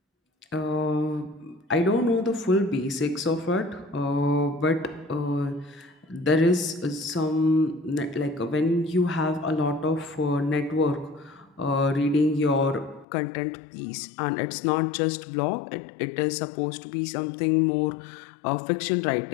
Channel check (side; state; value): right; drops out; at 13.1 s